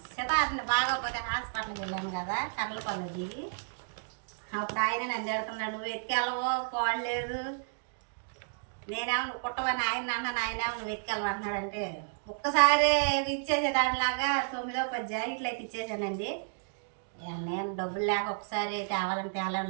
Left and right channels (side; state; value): left; silent; digital silence